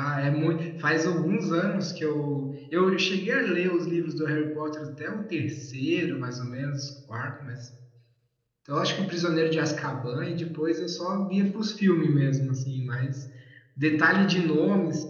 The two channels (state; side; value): identical; both; correlation 1.00